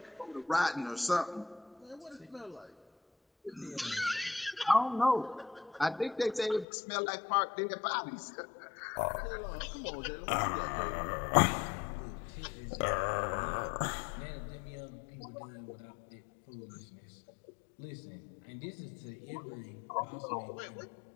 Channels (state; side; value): drops out; right; at 6.7 s